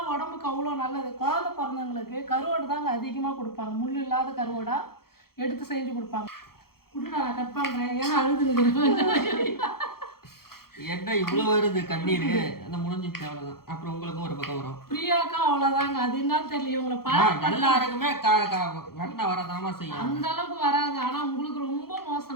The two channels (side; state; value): right; late; 0.94 ms